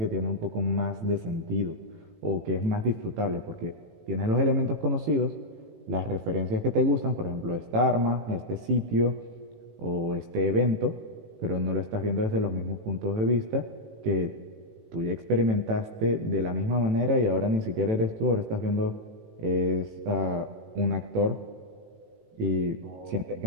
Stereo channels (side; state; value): left; late; 18 ms